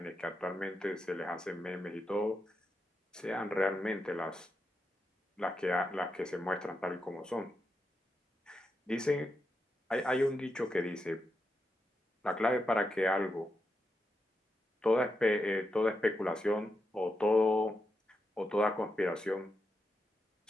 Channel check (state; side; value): normal; both; correlation 0.86